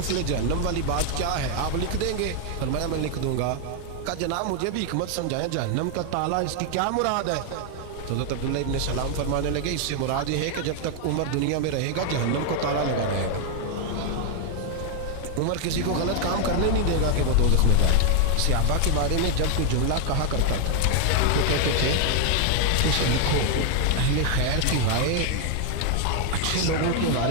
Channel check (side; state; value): both; different; correlation 0.00